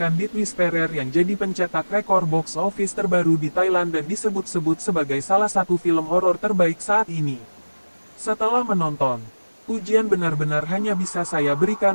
Death Whisperer yang jadi pencetak rekor box office terbaru di Thailand dan disebut-sebut sebagai salah satu film horor terbaik saat ini. Setelah menonton, pujian benar-benar hanya bisa saya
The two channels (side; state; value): both; inverted; correlation -1.00